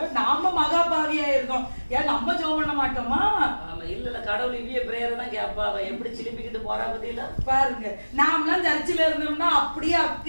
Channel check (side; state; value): both; inverted; correlation -1.00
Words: நாம மகாபாவியா இருக்கோம். ஏன் நம்ம ஜெபம் பண்ண மாட்டோமா? ஆமா, இல்ல கடவுள் இவ்விய பிரேயர் தான் கேப்பா. அவ எப்படி சிலிப்பிக்கிட்டு போறா பத்தியில பாருங்க. நாமெல்லாம் சர்ச்சில் இருந்தோம்னா அப்படியே